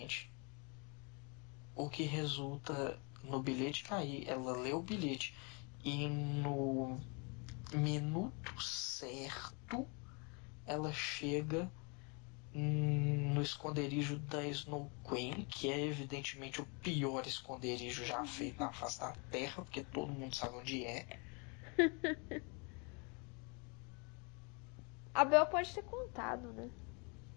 o que resulta no bilhete cair. Ela lê o bilhete e no minuto certo ela chega no esconderijo da Snow Queen, que é evidentemente o pior esconderijo já feito na face da Terra, porque todo mundo sabe onde é. A Bel pode ter contado, né?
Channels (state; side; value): quieter; right; 33.1 dB